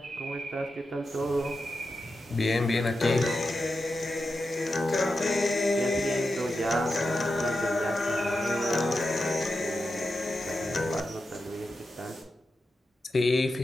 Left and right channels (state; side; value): normal; both; correlation 0.89